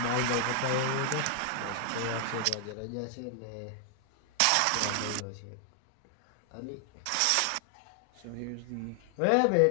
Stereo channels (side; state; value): both; different; correlation 0.00